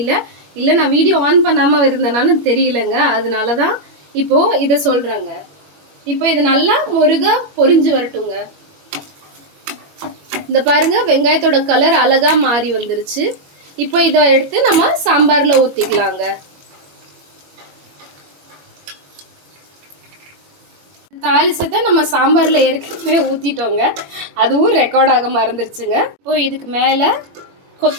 இல்லை நான் வீடியோ ஆன் பண்ணாமல் இருந்தேனான்னு தெரியலங்க, அதனால தான் இப்போது இதை சொல்கிறேங்க. இப்போ இது நல்லா முருகா பொரிஞ்சு வரட்டுங்க. இந்த பாருங்க, வெங்காயத்தோட கலர் அழகா மாறி வந்துருச்சு. இப்போ இதை எடுத்து நம்ம சாம்பாரில் ஊற்றிக்கலாங்க. தாளிசத்தை நம்ம சாம்பாரில் ஏற்கனவே ஊற்றிட்டோங்க, அதுவும் ரெக்கார்ட் ஆக மறந்துருச்சுங்க. இப்போ இதுக்கு மேலே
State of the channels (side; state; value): left; late; 21 ms